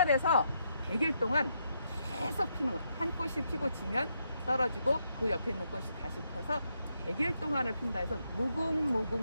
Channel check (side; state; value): both; inverted; correlation -0.79